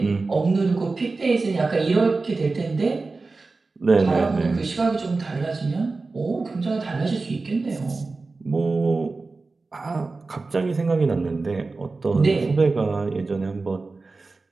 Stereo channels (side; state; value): left; quieter; 3.7 dB